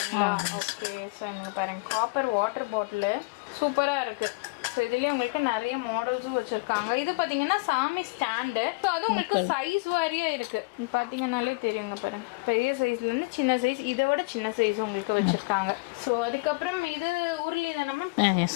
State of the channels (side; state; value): right; quieter; 27.7 dB